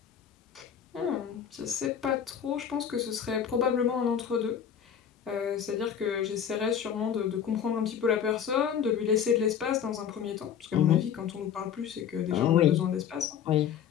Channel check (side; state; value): right; quieter; 8.4 dB